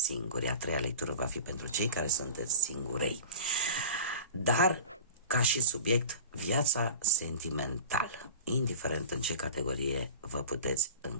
singuri. A treia lectură va fi pentru cei care sunteți singurei. Dar ca și subiect, viața sentimentală, indiferent în ce categorie vă puteți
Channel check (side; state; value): both; inverted; correlation -0.38